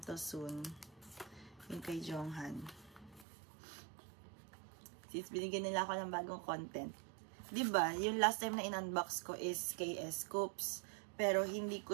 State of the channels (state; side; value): drops out; left; at 3.2 s